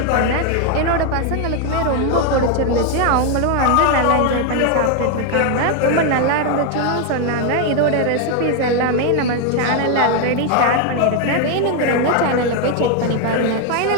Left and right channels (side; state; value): both; different; correlation 0.01